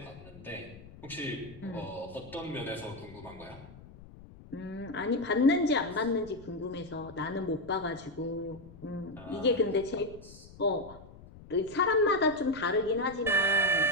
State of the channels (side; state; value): left; noise; rumble, 19 dB below the sound